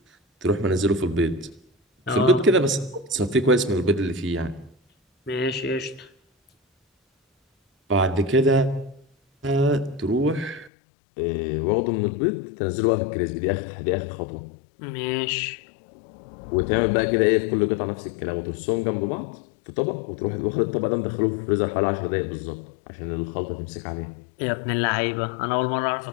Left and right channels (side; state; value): right; drops out; at 10.7 s